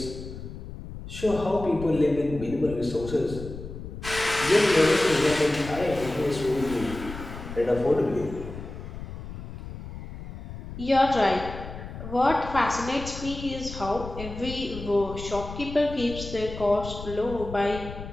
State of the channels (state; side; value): noise; left; rumble, 11 dB below the sound